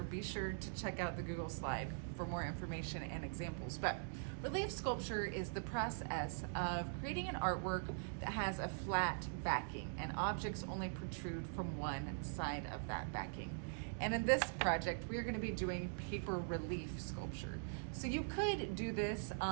be sure to check out the Google slide for more information and examples. But relief sculpture is the process of creating an artwork that has a flat backing and objects only protrude from one side of that backing. And in this project, we're going to be doing paper relief sculpture. So you could do this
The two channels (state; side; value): silent; left; digital silence